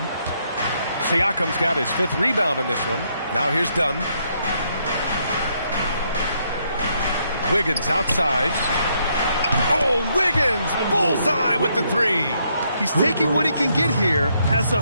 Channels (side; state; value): both; inverted; correlation -0.74